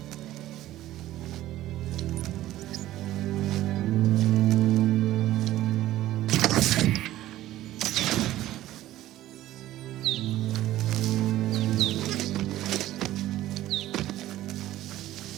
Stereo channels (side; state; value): left; quieter; 14.5 dB